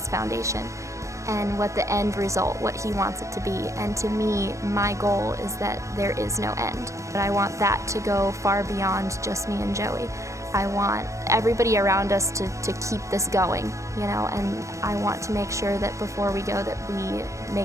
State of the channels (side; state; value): left; late; 0.15 ms